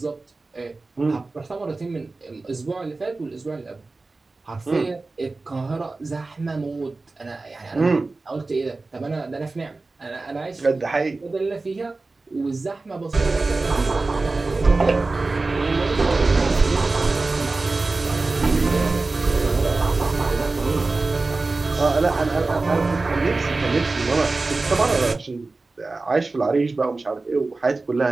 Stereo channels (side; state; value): left; quieter; 3.5 dB